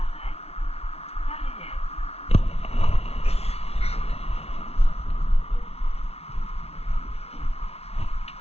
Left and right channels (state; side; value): late; right; 0.30 ms